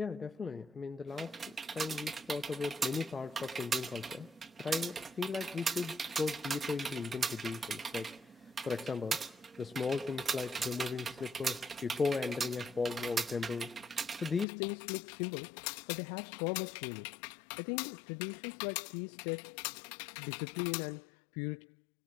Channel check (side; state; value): right; drops out; at 14.5 s